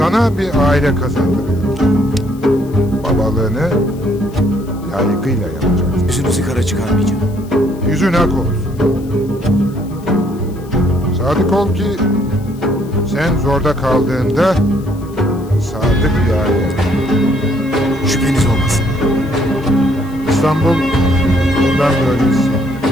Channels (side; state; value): left; noise; hiss, 26 dB below the sound